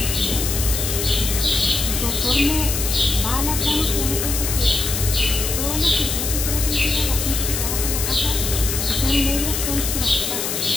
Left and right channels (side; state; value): left; noise; hiss, 2 dB below the sound